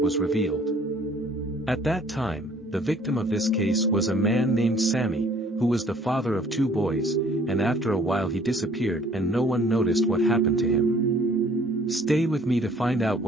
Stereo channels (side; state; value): both; normal; correlation 0.57